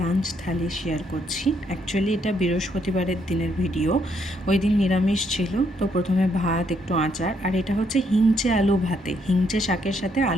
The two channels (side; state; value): both; normal; correlation 0.72